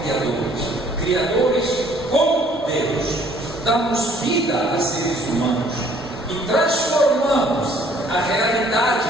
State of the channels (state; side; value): normal; both; correlation 0.59